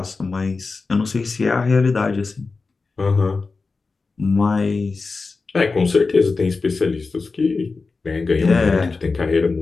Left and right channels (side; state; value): right; quieter; 4.1 dB